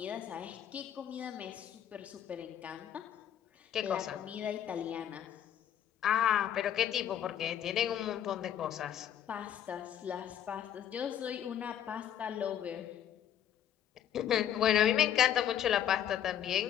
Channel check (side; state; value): right; quieter; 10.2 dB